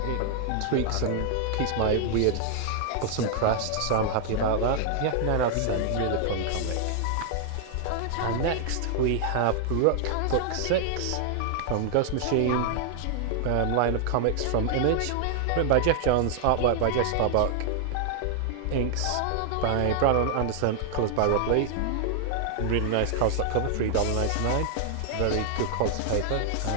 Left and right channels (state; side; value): different; both; correlation 0.00